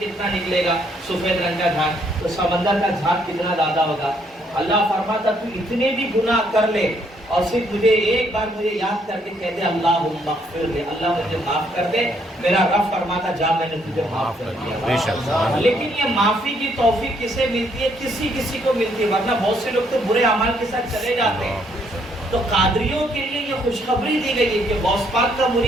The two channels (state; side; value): normal; both; correlation 0.70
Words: نکلے گا، سفید رنگ کا جھاگ، تو سمندر کا جھاگ کتنا زیادہ ہوگا۔ اللہ فرماتا تو اتنے بھی گناہ کر لے اور صرف مجھے ایک بار مجھے یاد کر کے کہہ دے اللہم اغفر لے، اللہ مجھے معاف کر دے، میرا رب فرماتا جا میں نے تجھے معاف کر دیا۔ لیکن یہ معافی کی توفیق کسے ملتی ہے؟ کسی کو ملتی ہے، ورنہ بہت سے لوگ تو برے اعمال کے ساتھ چلے جاتے ہیں۔ تو قادریوں کے لیے یہ خوشخبری دی گئی ہے کہ غوث پاک کا